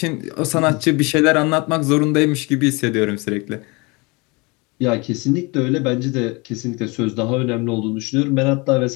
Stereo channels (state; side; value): quieter; right; 27.2 dB